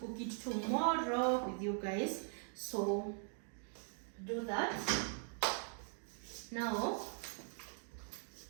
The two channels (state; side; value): silent; left; 50 dB below the other